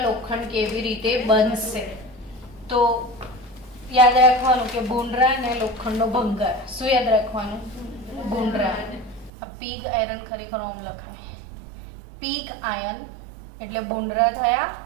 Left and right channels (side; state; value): left; drops out; at 9.3 s